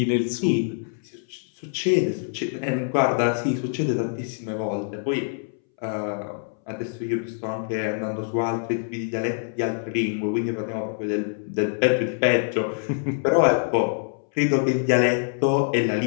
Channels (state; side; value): silent; right; 62 dB below the other